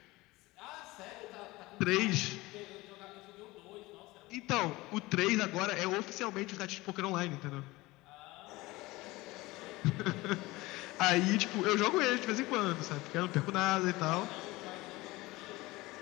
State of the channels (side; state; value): right; quieter; 20.5 dB